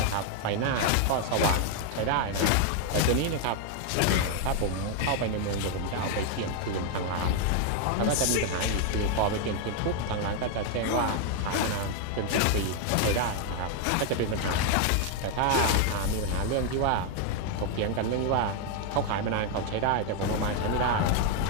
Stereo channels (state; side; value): different; both; correlation 0.00